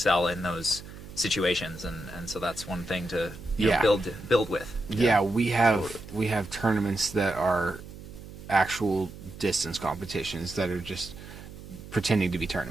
in those situations, and so that's one thing to build with. Yeah, we have tournaments that are actual distance competitions that are just pretending to be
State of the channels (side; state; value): right; noise; hum, 15 dB below the sound